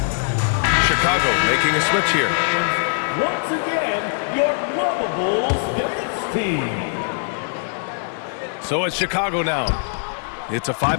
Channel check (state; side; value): silent; right; digital silence